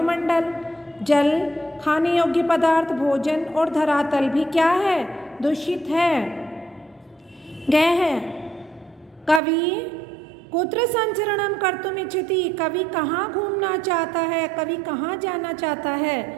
जल, खाने योग्य पदार्थ, भोजन और धरातल भी क्या है, दूषित है। ग है कवि कुत्र संचरणम कर्तुम इच्छति, कवि कहाँ घूमना चाहता है, कवि कहाँ जाना चाहता है।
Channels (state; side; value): drops out; left; at 9.4 s